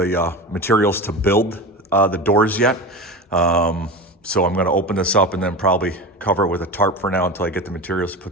materials to build the doors yet. So I'm gonna open this up and then probably cover it with a tarp for now until I get the materials to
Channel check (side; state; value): both; normal; correlation 0.27